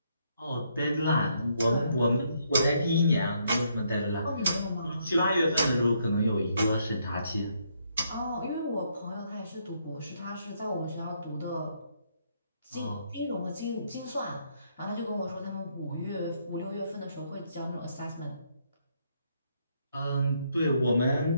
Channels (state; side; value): inverted; both; correlation -0.73